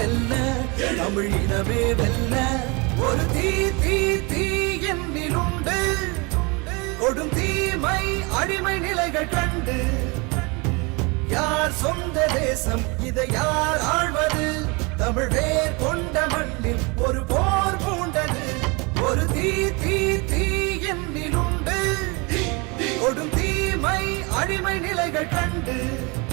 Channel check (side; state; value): left; quieter; 28.7 dB